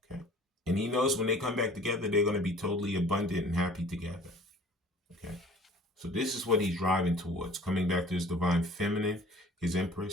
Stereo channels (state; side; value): normal; both; correlation 0.49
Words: Okay. And he knows when they come back together, they're going to be totally abundant and happy together. Okay. So this is what he's driving towards, coming back to his Divine Feminine, his